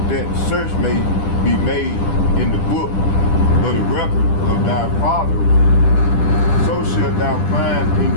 that search may be made in the book of the record of thy fathers. So shalt thou find in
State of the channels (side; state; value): right; late; 10 ms